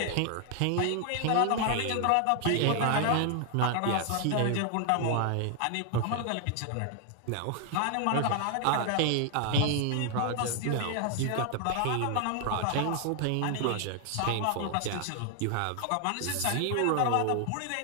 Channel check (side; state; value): both; different; correlation 0.00